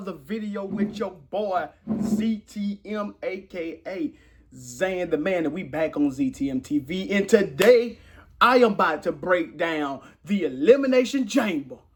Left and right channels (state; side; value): identical; both; correlation 1.00